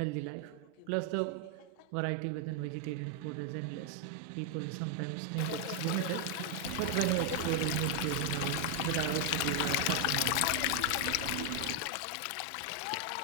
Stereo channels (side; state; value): both; different; correlation 0.00